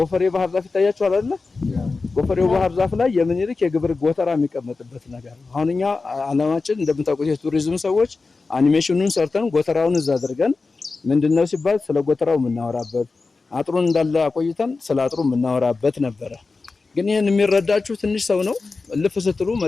ባህር ዛፍ ይታያችኋል አይደል? ጎፈሬው ባህር ዛፍ ላይ የምኒልክ የግብር ጎተራ የሚቀመጥበት ነገር ነው። አሁን እኛ አላማችን እንደምታውቁት የቱሪዝም ሰዎች አኒሜሽኑን ሰርተን ጎተራውን እዛ አድርገን ምንድነው ሲባል ስለ ጎተራው የምናወራበት አጥሩን እንዳለ አቆይተን ስለ አጥሩ የምናወራበት ነበረ። ግን ይሄን የሚረዳችሁ ትንሽ ሰው ነው። ልፍ ስትሉ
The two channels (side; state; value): right; quieter; 4.0 dB